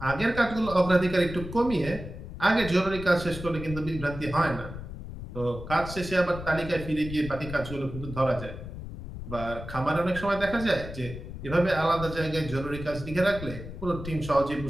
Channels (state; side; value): noise; left; rumble, 10 dB below the sound